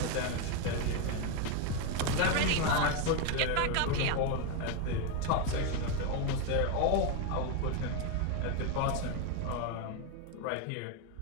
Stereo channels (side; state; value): both; different; correlation 0.02